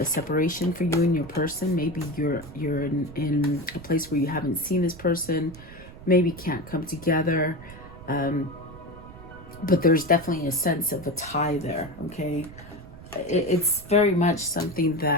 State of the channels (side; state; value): right; noise; rumble, 17 dB below the sound